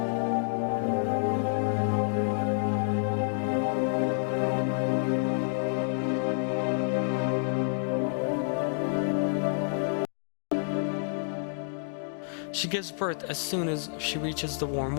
She gives birth as soon as she reaches the warm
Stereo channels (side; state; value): right; silent; digital silence